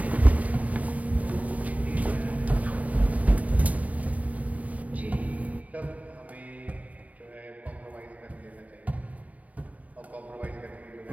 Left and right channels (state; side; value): late; left; 0.071 ms